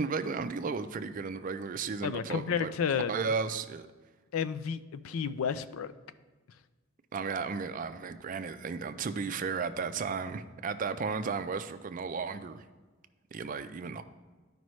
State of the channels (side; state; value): both; normal; correlation 0.02